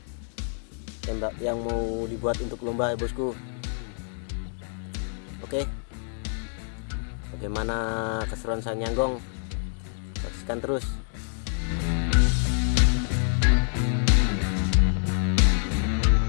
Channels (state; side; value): silent; right; 60 dB below the other